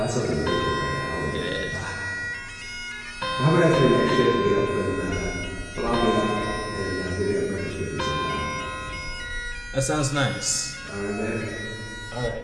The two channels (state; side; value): identical; both; correlation 1.00